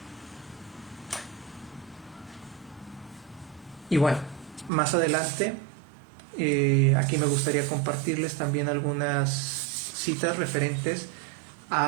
Y bueno, más adelante, aquí me gustaría compartirles también algunas citas referentes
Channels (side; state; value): left; drops out; at 4.7 s